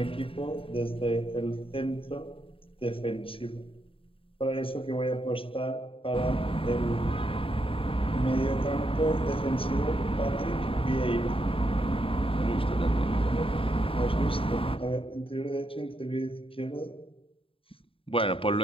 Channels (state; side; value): late; right; 0.26 ms